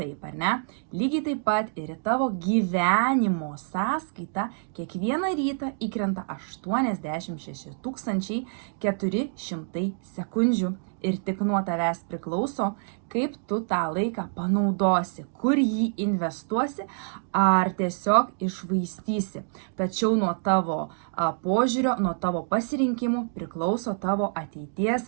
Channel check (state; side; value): silent; left; digital silence